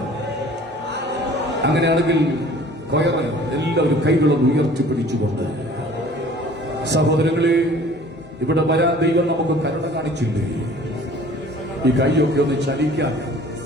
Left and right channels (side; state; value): both; normal; correlation 0.49